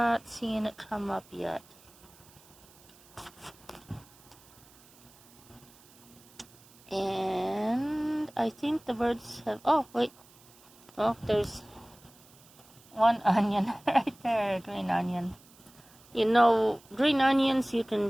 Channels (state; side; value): noise; right; hiss, 26 dB below the sound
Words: seeing it come up yet. And I think the birds have, oh wait, well, there's one onion right there, green onion. You know, green onions, you can